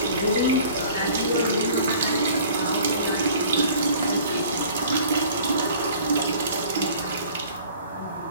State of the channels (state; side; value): inverted; both; correlation -0.49